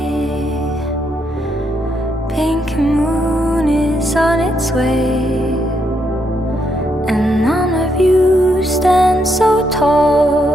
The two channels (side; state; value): both; normal; correlation 0.77